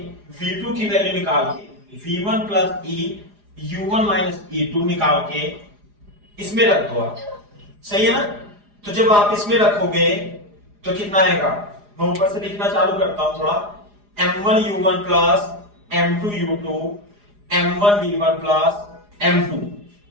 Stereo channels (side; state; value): left; late; 4.9 ms